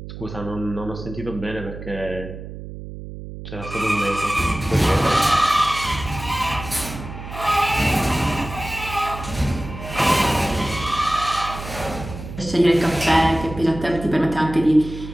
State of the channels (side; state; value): right; noise; hum, 11 dB below the sound